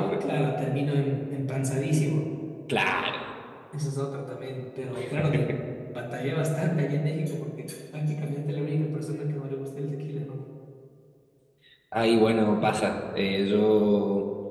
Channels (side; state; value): both; identical; correlation 1.00